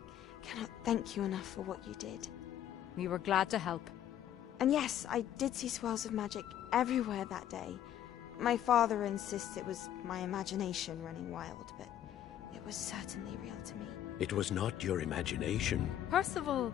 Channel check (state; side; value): quieter; right; 11.0 dB